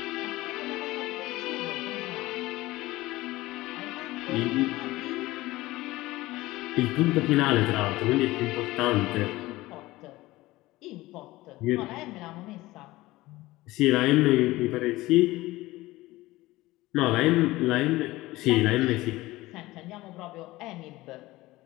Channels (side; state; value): right; quieter; 18.6 dB